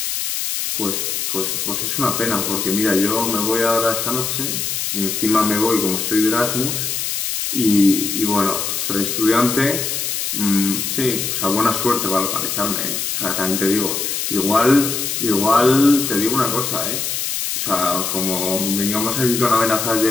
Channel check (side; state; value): left; noise; hiss, 2 dB below the sound